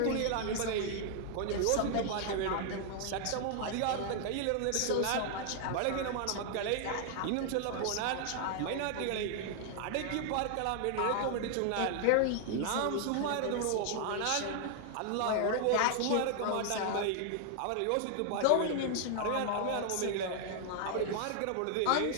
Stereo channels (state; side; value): different; both; correlation 0.00